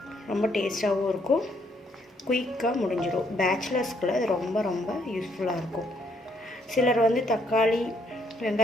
ரொம்ப டேஸ்ட்டாகவும் இருக்கும், குயிக்காக முடிஞ்சிடும். பேச்சுலர்ஸ்க்குள்ள இது ரொம்ப ரொம்ப யூஸ்ஃபுல்லாக இருக்கும். சிலர் வந்து தக்காளி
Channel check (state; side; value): normal; both; correlation 0.70